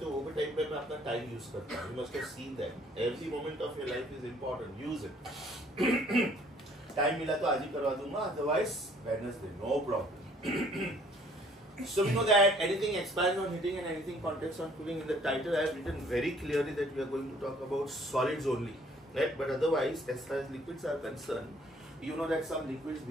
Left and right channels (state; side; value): normal; both; correlation 0.59